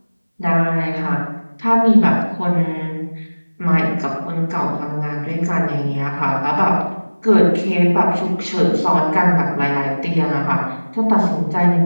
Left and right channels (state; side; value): inverted; both; correlation -1.00